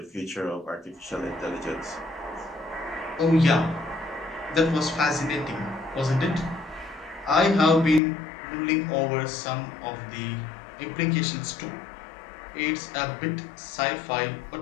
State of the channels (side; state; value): right; drops out; at 8.0 s